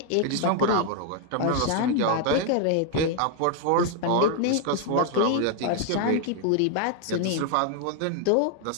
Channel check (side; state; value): both; different; correlation 0.00